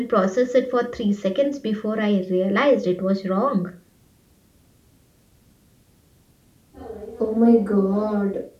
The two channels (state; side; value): identical; both; correlation 1.00